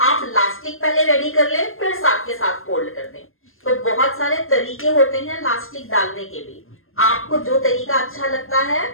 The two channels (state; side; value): late; right; 0.60 ms